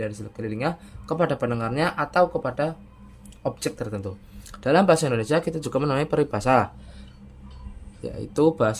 di sekelilingnya, kepada pendengarnya, atau kepada objek tertentu. Dalam bahasa Indonesia kita juga menemui peribahasa, yaitu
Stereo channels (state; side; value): identical; both; correlation 1.00